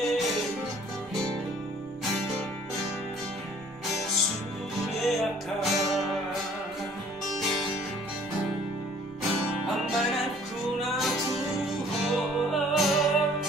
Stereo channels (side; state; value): both; normal; correlation 0.55